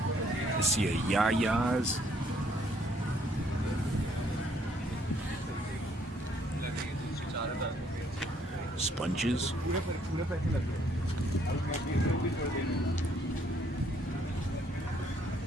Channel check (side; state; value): both; normal; correlation 0.66